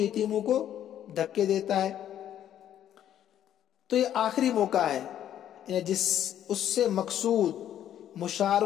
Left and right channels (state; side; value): quieter; right; 10.8 dB